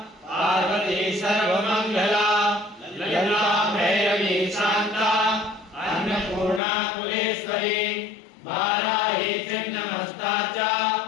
पार्वती सर्वमङ्गला ललिता भैरवी शान्ता अन्नपूर्णा कुलेश्वरी वाराही छिन्नमस्ता च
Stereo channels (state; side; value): drops out; right; at 6.6 s